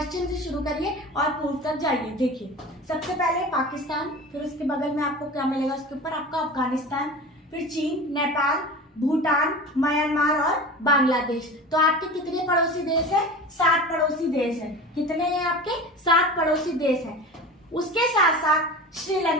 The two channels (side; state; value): both; normal; correlation 0.34